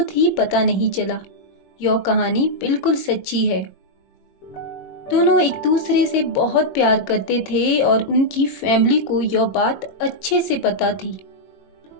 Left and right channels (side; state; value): right; late; 21 ms